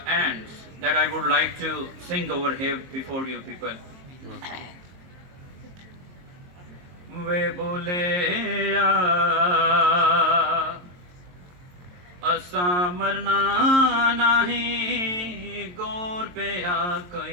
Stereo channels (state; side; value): late; left; 22 ms